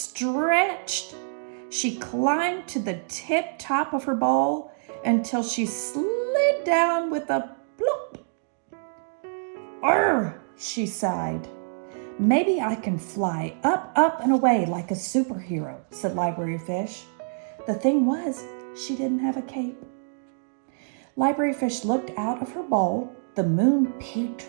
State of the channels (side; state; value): left; silent; digital silence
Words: She climbed to the tip top of her bowl until she slid down with a plop. Arr, she sighed. Maybe I can fly up, up, and away like a superhero, said Library Fish. The thing was, she didn't have a cape. Library Fish looked out of her bowl. The moon peeked